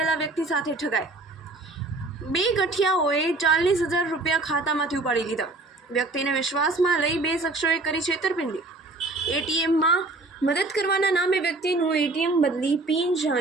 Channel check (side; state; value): left; quieter; 3.1 dB